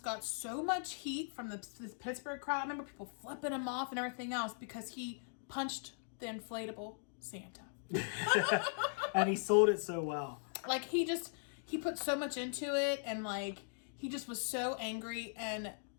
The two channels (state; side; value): silent; right; digital silence